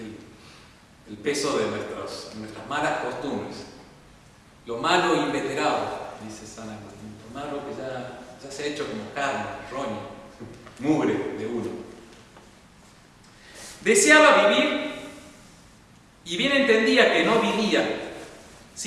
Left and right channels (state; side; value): identical; both; correlation 1.00